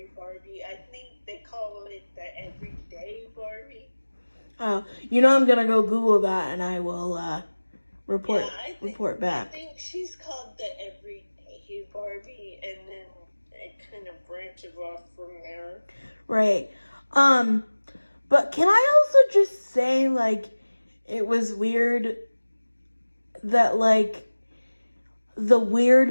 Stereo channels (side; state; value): both; inverted; correlation -1.00